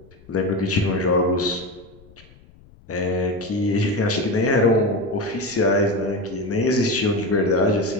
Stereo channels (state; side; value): noise; left; rumble, 25 dB below the sound